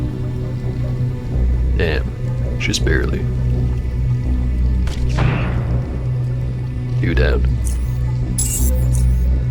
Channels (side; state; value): both; identical; correlation 1.00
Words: Damn, just barely. Two down.